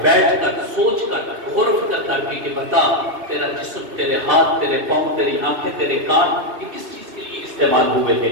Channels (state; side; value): late; left; 2.6 ms